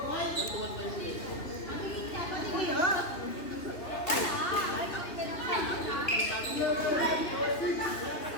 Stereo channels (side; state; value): right; late; 2.9 ms